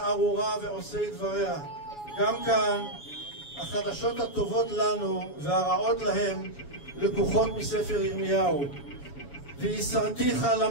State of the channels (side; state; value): right; late; 7.1 ms